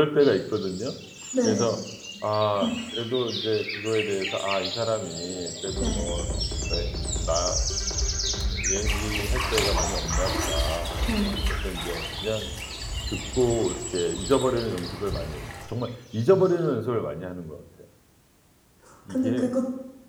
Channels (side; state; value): both; identical; correlation 1.00